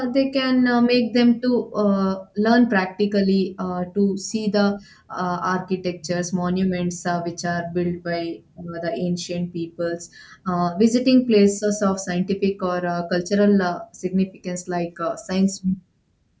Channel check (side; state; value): both; identical; correlation 1.00